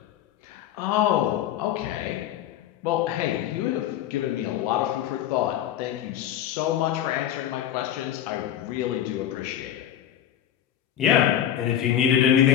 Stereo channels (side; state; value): right; quieter; 10.8 dB